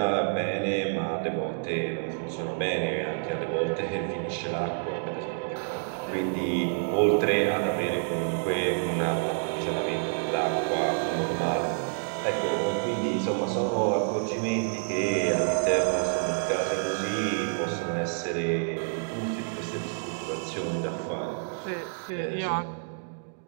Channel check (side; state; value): left; silent; digital silence